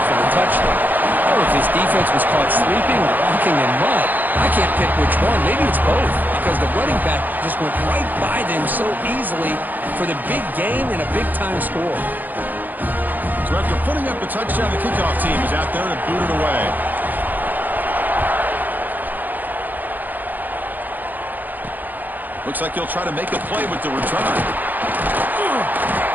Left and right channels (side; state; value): left; late; 0.085 ms